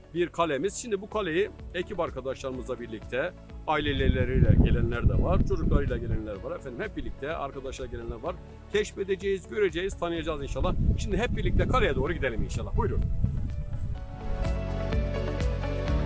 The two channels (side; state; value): both; identical; correlation 1.00